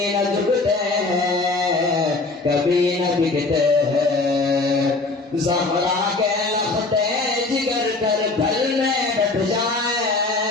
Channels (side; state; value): right; quieter; 3.4 dB